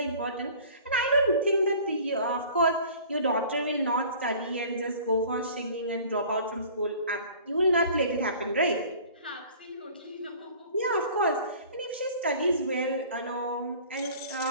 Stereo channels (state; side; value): inverted; both; correlation -0.47